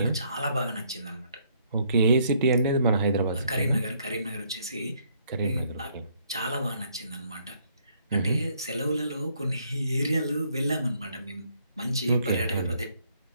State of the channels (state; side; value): inverted; both; correlation -0.68